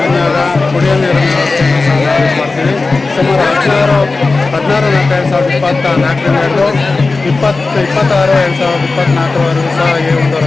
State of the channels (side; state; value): right; quieter; 3.7 dB